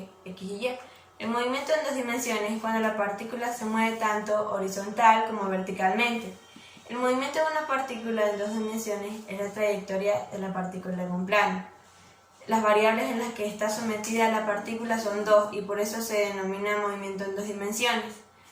X y Y. El movimiento en 2 dimensiones es cuando la partícula se mueve tanto horizontal como verticalmente. El movimiento de una partícula en 2 dimensiones es la trayectoria de la partícula en un plano. Las variables en las que está sometida la partícula son 2 y por eso se denomina movimiento en 2 dimensiones.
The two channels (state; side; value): identical; both; correlation 1.00